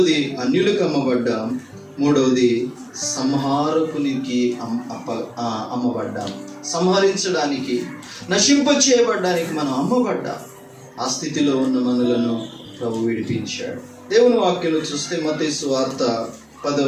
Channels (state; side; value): identical; both; correlation 1.00